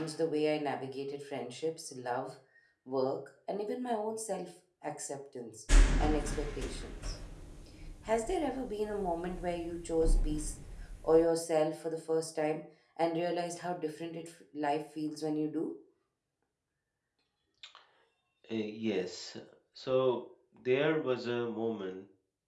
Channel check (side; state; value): both; identical; correlation 1.00